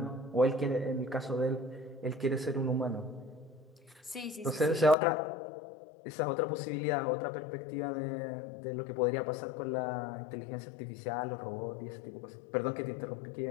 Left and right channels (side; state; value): right; drops out; at 5.0 s